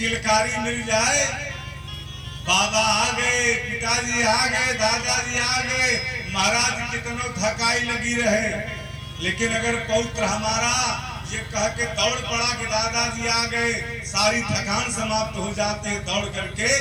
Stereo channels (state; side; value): identical; both; correlation 1.00